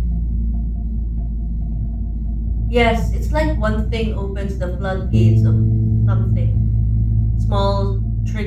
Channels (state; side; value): identical; both; correlation 1.00